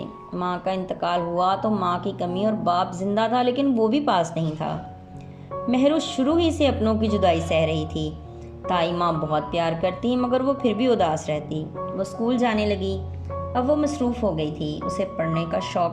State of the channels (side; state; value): both; identical; correlation 1.00